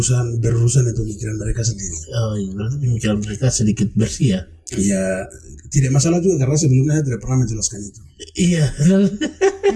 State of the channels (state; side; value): identical; both; correlation 1.00